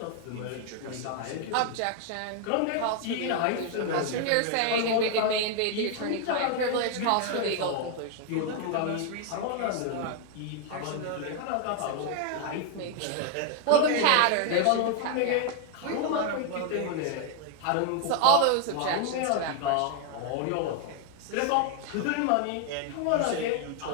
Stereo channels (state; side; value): different; both; correlation 0.00